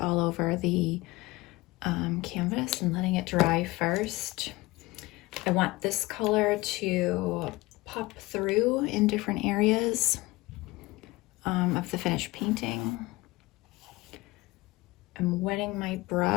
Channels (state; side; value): quieter; right; 21.0 dB